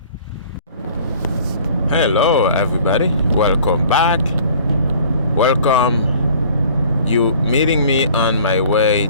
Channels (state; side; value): inverted; both; correlation -0.51